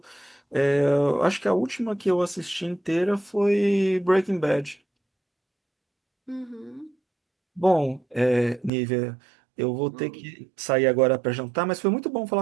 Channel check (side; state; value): left; drops out; at 8.7 s